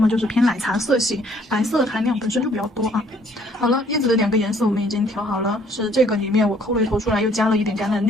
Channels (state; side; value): normal; both; correlation 0.62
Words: 就是偏奶茶色系，白色含量本身就比较多啊。好了，叶子的2个颜色我们已经调好了，是这个里面我抠了一头出来，又加了一点橄榄